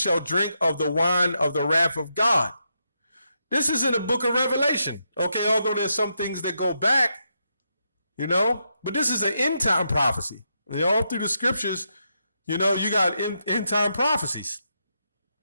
drink of the wine of the wrath of God. This is in the book of Revelation. Okay, although there's some things that go back, but this is an end time prophecy. All through the scriptures, you got end time prophecies.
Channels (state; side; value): inverted; both; correlation -0.82